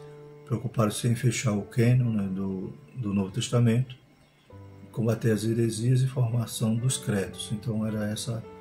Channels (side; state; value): both; identical; correlation 1.00